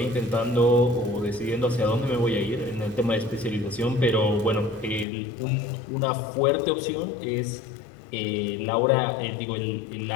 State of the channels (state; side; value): drops out; right; at 5.1 s